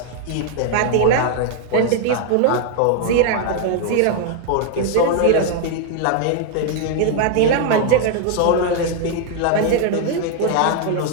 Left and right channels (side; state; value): both; different; correlation 0.00